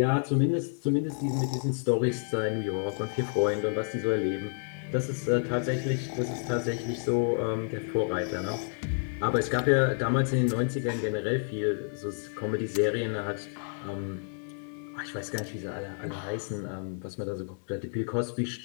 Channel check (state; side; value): silent; right; digital silence